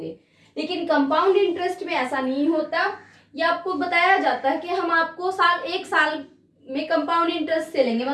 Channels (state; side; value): identical; both; correlation 1.00